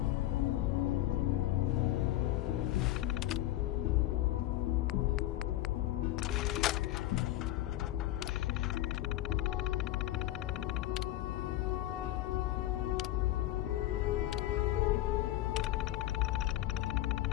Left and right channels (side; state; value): right; quieter; 14.9 dB